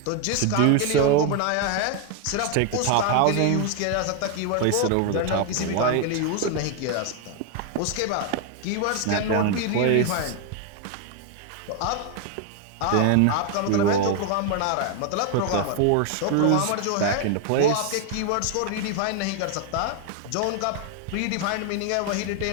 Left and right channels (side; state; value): both; different; correlation 0.01